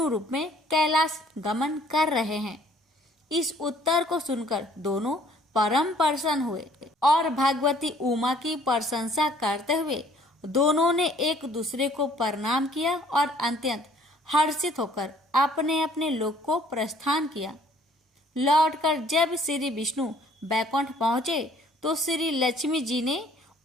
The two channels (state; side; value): normal; both; correlation 0.58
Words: रूप में कैलाश गमन कर रहे हैं। इस उत्तर को सुनकर दोनों परम प्रसन्न हुए और भगवती उमा की प्रशंसा करते हुए दोनों ने एक दूसरे को प्रणाम किया और अत्यंत हर्षित होकर अपने अपने लोक को प्रस्थान किया। लौटकर जब श्री विष्णु बैकुंठ पहुंचे तो श्री लक्ष्मी जी ने